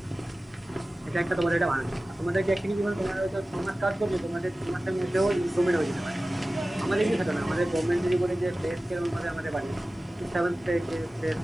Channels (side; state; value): both; normal; correlation 0.96